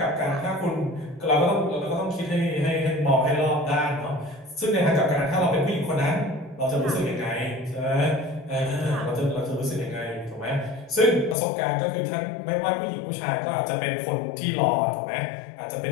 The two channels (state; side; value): drops out; right; at 11.4 s